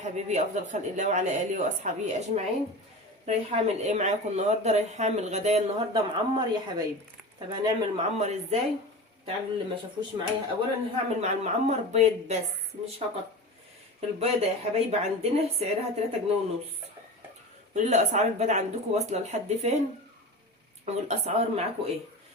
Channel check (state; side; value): normal; both; correlation 0.30